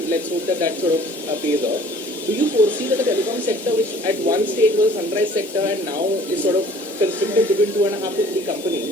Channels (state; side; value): normal; both; correlation 0.52